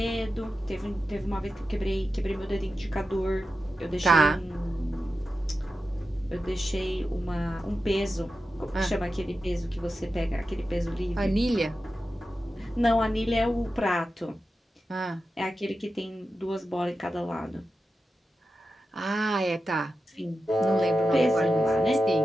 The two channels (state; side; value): normal; both; correlation 0.91